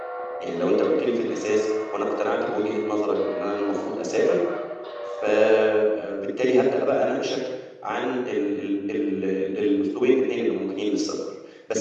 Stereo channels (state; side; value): identical; both; correlation 1.00